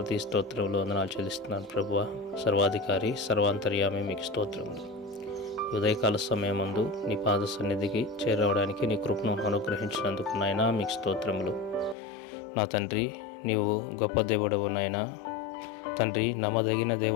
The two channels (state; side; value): drops out; right; at 12.0 s